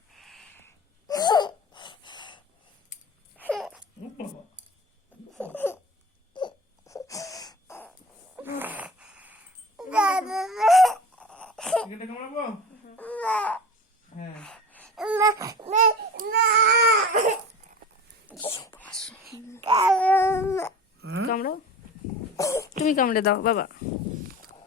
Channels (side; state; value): both; normal; correlation 0.34